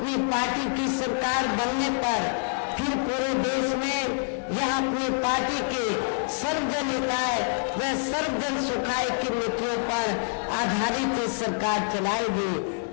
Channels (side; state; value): right; silent; digital silence